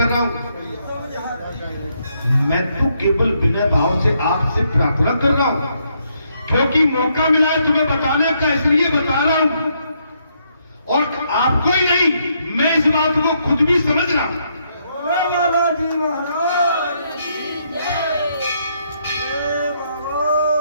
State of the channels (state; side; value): inverted; both; correlation -0.75